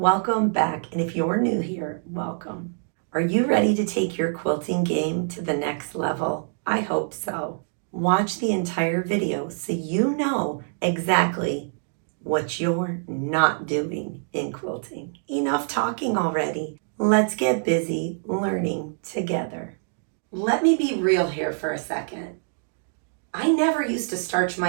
back, and if you're new here, welcome. Are you ready to take your quilting game to the next level? I hope so. Watch the entire video so you know exactly what you're not doing in quilting. Enough talking already. Let's get busy learning together. Let me be real here for a second. I never used to starch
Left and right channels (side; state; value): left; silent; digital silence